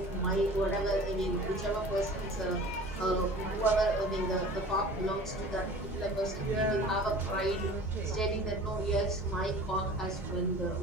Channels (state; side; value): normal; both; correlation 0.42